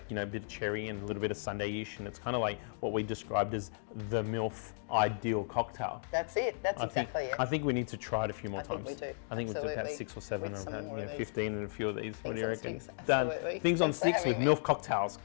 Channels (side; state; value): right; silent; digital silence